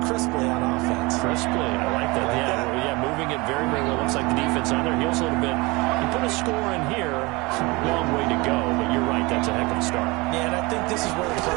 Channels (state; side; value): quieter; left; 24.5 dB